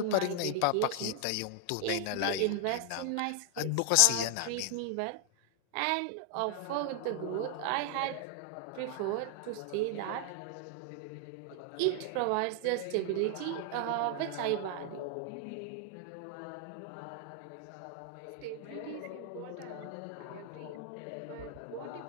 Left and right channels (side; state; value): both; different; correlation 0.00